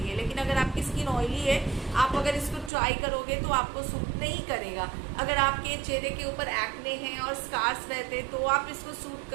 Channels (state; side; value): drops out; left; at 2.7 s